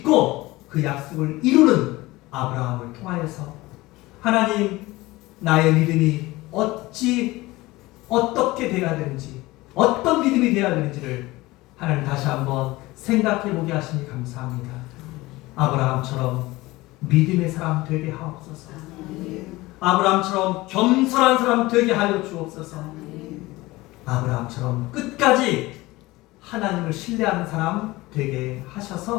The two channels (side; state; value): right; quieter; 19.9 dB